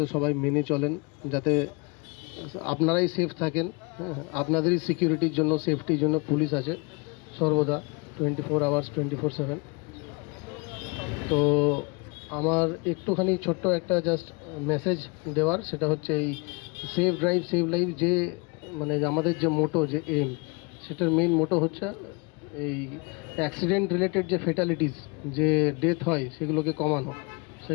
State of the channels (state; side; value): quieter; right; 30.2 dB